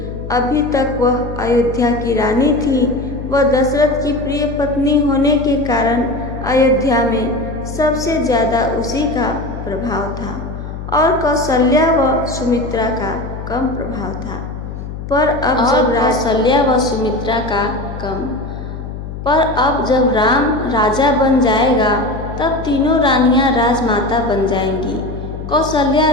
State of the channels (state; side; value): noise; left; hum, 9 dB below the sound